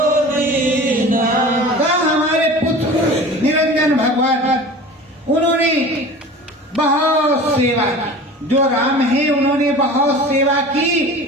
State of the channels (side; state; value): both; normal; correlation 0.38